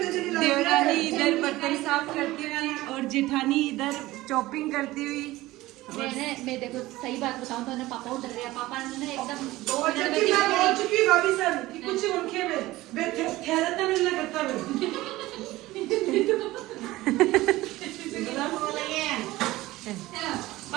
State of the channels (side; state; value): left; quieter; 17.9 dB